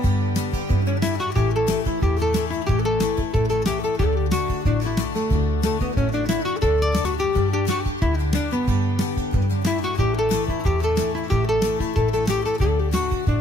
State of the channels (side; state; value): both; normal; correlation 0.70